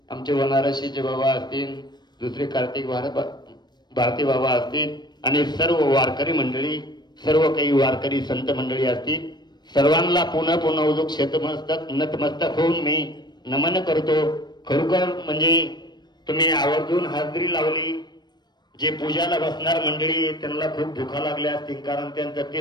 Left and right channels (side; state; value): right; late; 0.21 ms